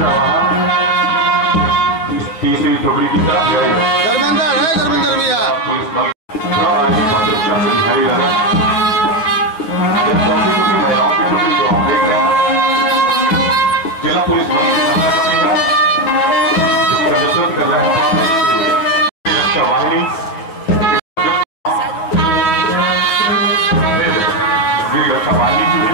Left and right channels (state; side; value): late; right; 9.3 ms